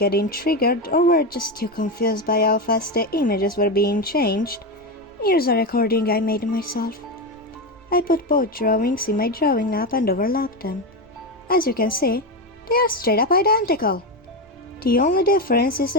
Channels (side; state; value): both; normal; correlation 0.14